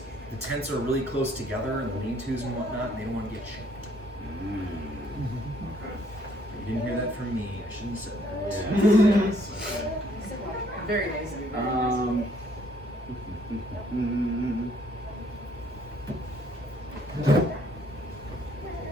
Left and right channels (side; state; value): both; normal; correlation 0.64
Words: the tents are really close together and the lean-tos and whatnot, and they don't want to get shanked. Okay. You didn't hear that from me. I shouldn't have said that. Yes. Okay. Very nice of you. Very nice of you.